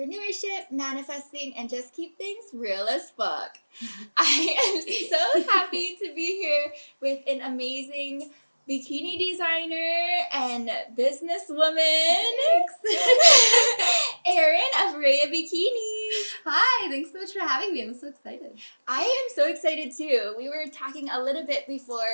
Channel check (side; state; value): both; inverted; correlation -1.00